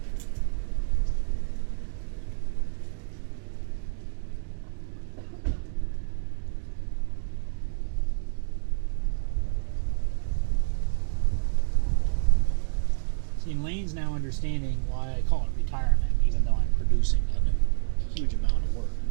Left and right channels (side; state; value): left; silent; digital silence